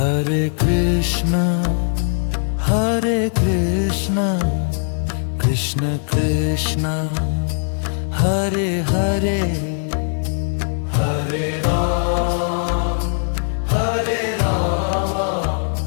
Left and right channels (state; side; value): silent; right; digital silence